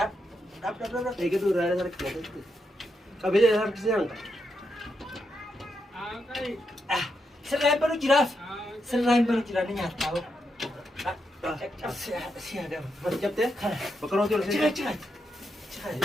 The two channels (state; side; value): normal; both; correlation 0.83